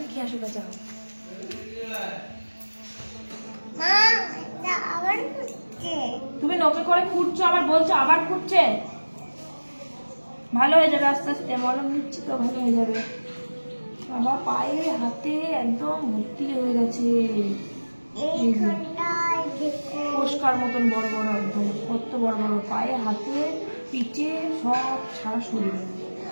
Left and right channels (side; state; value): both; inverted; correlation -1.00